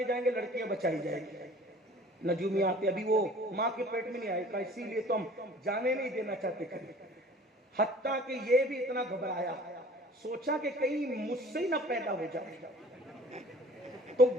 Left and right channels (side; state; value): both; normal; correlation 0.48